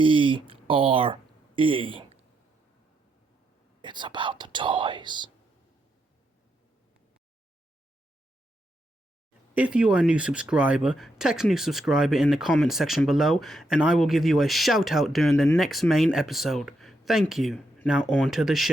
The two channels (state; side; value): normal; both; correlation 0.81